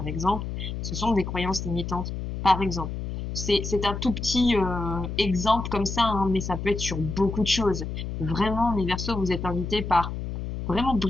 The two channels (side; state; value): left; noise; hum, 5 dB below the sound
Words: exemple. Ce sont des croyances limitantes par exemple. C'est un tout petit exemple comme ça, hein, mais ça peut être sur beaucoup de choses. Vraiment, mes Verseaux, vous êtes invités par vraiment